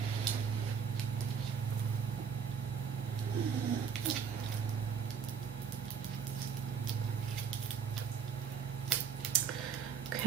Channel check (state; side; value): quieter; left; 6.7 dB